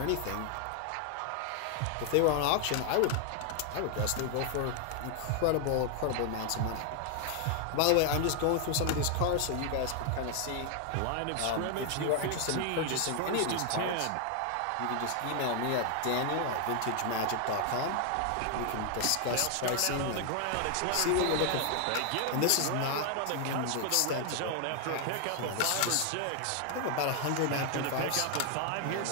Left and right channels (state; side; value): different; both; correlation 0.00